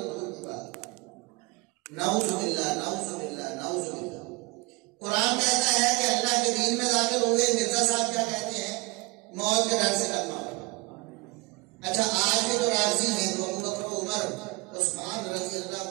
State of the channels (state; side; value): quieter; left; 25.1 dB